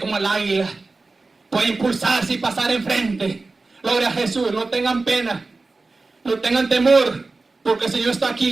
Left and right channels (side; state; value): left; quieter; 3.6 dB